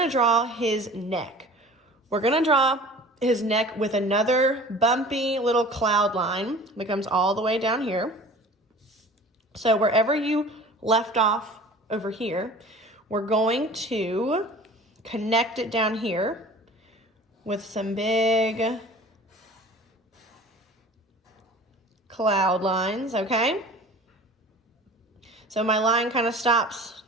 draw his neck. We're gonna draw his neck with another bumpy little cloud line that comes all the way down here. So wherever you left off over here, we're going to connect it down here with some big cloud lines, okay? So my line kind of stops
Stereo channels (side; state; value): both; normal; correlation 0.43